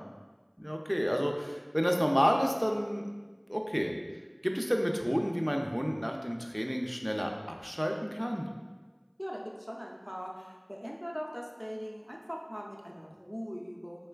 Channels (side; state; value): both; identical; correlation 1.00